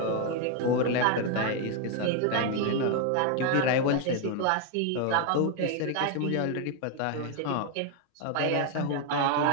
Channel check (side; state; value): both; different; correlation 0.01